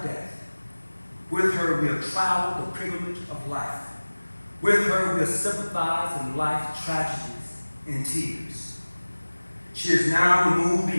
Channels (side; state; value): both; inverted; correlation -1.00